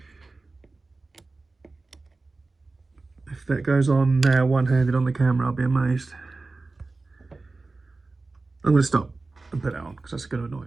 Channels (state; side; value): quieter; left; 3.5 dB